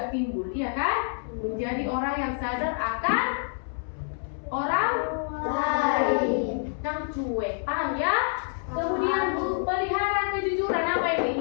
timbul, iya kan? Menjadi orang yang sadar akan orang lain. Yang cuek, paham ya? Kemudian pelihara kejujuran apa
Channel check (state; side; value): silent; right; 60 dB below the other